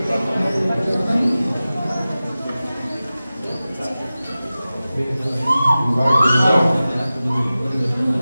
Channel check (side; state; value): both; inverted; correlation -0.95